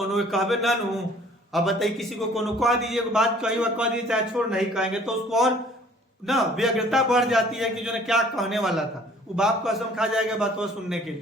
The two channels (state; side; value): normal; both; correlation 0.54